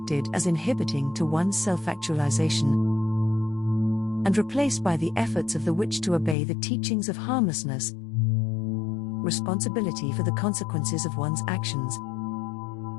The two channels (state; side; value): drops out; right; at 6.4 s